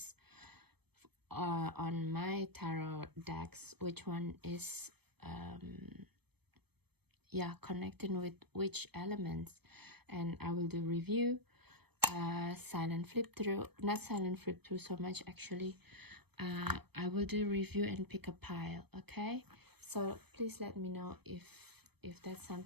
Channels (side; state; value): left; late; 0.97 ms